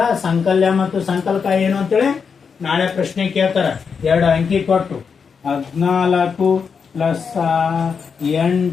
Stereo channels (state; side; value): quieter; right; 6.0 dB